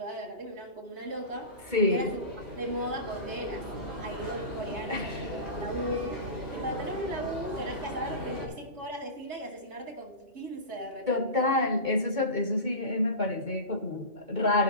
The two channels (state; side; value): late; left; 2.2 ms